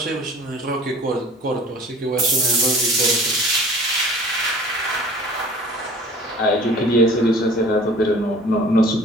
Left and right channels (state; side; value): normal; both; correlation 0.46